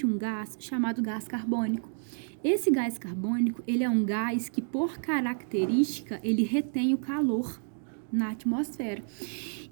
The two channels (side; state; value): left; silent; digital silence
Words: um gás chamado gás carbônico. Esse gás carbônico, ele é um gás que, por característica, ele retém o calor na atmosfera.